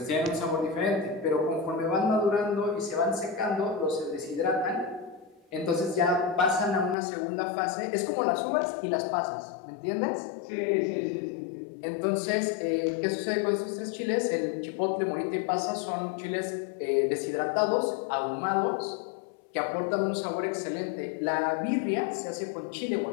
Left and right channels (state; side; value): drops out; right; at 7.0 s